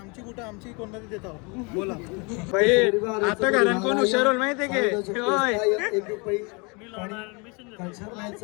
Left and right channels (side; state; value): right; quieter; 30.7 dB